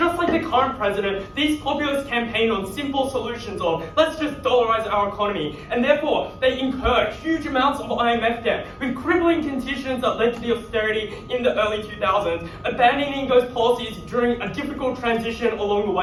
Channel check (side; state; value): both; identical; correlation 1.00